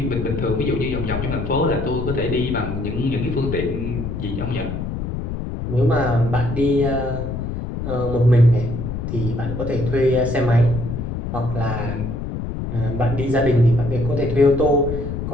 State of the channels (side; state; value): left; noise; rumble, 5 dB below the sound